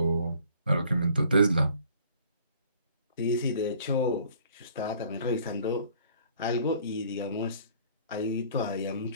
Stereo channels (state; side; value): inverted; both; correlation -0.55